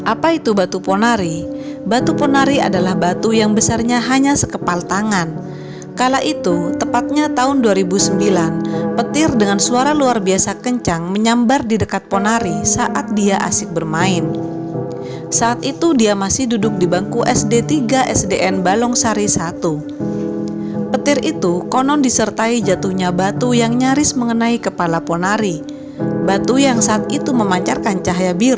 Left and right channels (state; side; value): identical; both; correlation 1.00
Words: Apa itu batu ponari? Batu ponari adalah batu yang besarnya hanya sekepal tangan. Kala itu, tepatnya tahun 2009, petir dengan suara luar biasa kencang menyambar di dekat ponari saat dia asik bermain. Saat itu dia masih duduk di bangku SD 3 SDN Balongsari 1. Petir itu konon disertai jatuhnya batu yang nyaris mengenai kepala ponari. Batu yang saat itu memancarkan cahaya